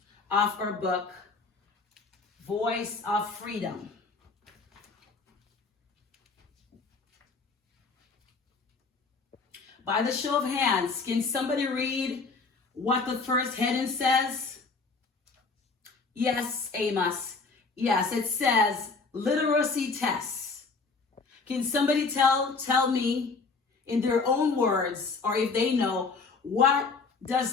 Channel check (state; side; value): quieter; right; 4.3 dB